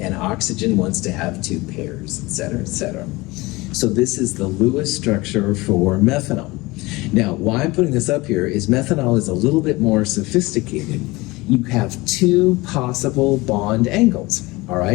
and oxygen wants to have two pairs, et cetera, et cetera. So this is the Lewis structure for methanol. Now, why I'm putting this up here is methanol is a little bit more sophisticated. You have two possible bond angles, all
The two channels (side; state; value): right; quieter; 21.9 dB